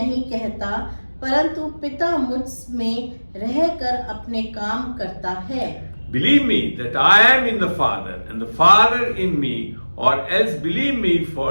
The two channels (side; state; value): both; inverted; correlation -1.00